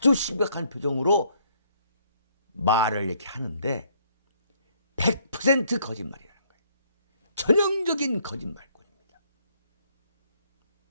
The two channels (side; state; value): both; inverted; correlation -0.66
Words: 심각한 표정으로 말을 이렇게 하는데 100% 거짓말이라는 거예요. 전형적인 거짓말꾼입니다.